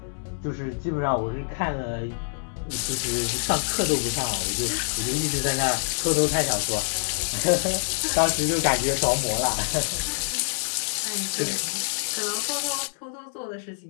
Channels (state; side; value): silent; right; 61 dB below the other